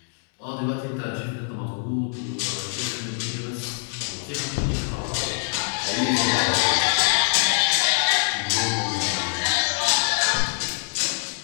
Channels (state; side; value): silent; right; digital silence